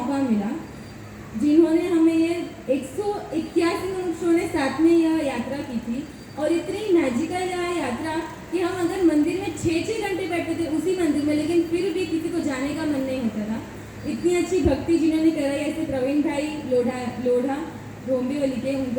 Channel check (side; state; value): both; identical; correlation 1.00